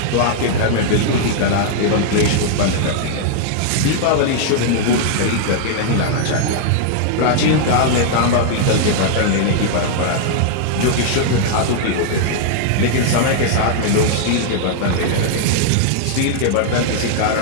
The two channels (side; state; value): both; different; correlation -0.01